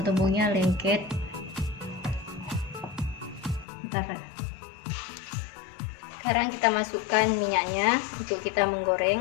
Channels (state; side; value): drops out; right; at 3.7 s